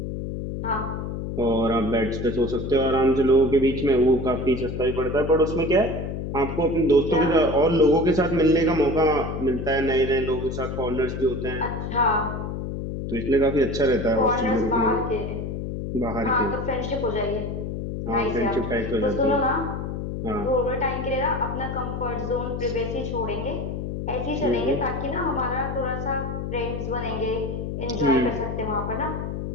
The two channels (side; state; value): left; noise; hum, 5 dB below the sound